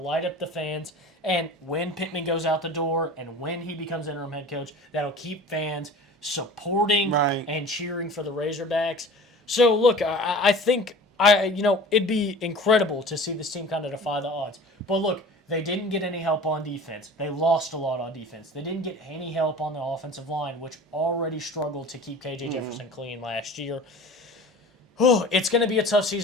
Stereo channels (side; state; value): both; normal; correlation 0.40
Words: up the fans. And when Pittman goes out the door and when he becomes interim head coach, that'll keep fans supporting and cheering for the Razorbacks. So, look, I think it'd be incredible to see this team kind of defy the odds. But, look, they didn't get any help on defense. They lost a lot on defense. They didn't get any help on the offensive line, which already struggled to keep KJ Jefferson clean last year. Oh, it's going to be a tough